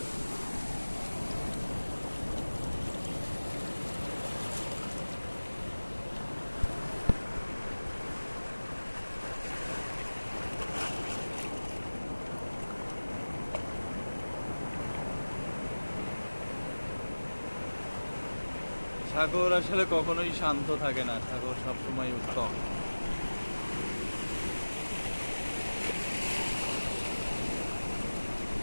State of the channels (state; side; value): inverted; both; correlation -1.00